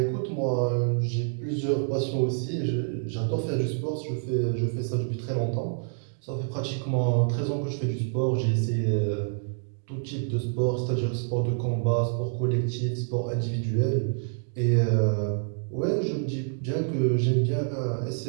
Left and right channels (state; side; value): silent; left; digital silence